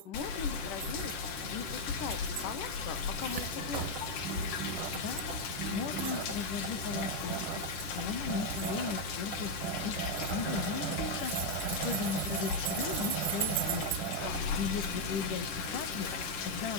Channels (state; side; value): late; right; 10 ms